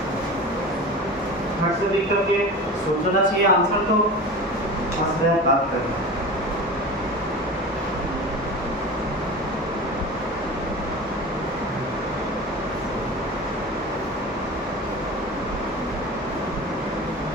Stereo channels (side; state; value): both; normal; correlation 0.32